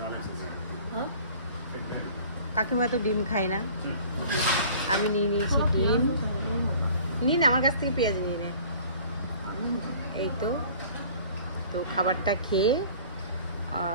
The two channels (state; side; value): inverted; both; correlation -0.48